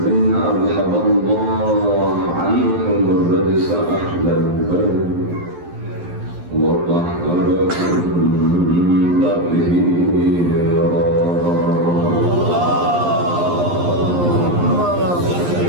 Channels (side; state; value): left; late; 11 ms